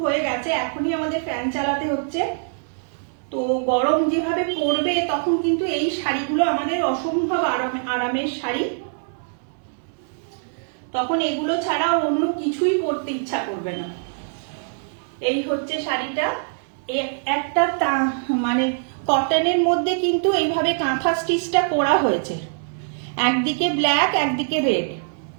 হয়ে গেছে, এখনই আমাদের ফ্যান চালাতে হচ্ছে, তো গরম যেভাবে পড়বে তখন কিন্তু এই শাড়িগুলো আমাদের অসম্ভব আরামের শাড়ি, তখন এগুলো ছাড়া অন্য কিছুই পরতে ইচ্ছা করবে না। এই হচ্ছে শাড়িটা, একটা মানে কটনের মধ্যে কিন্তু এইভাবে কাঁথা স্টিচটা করা হয়েছে, একদিকে ব্ল্যাক একদিকে রেড,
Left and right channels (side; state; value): left; silent; digital silence